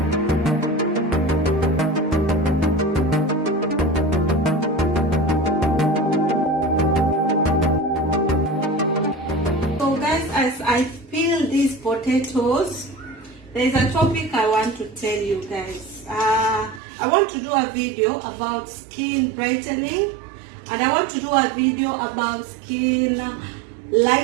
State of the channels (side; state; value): left; drops out; at 16.8 s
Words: As I peel these potatoes, there is a topic I want to tell you guys. I want to do a video about skin brightening, and I want to do a video about skin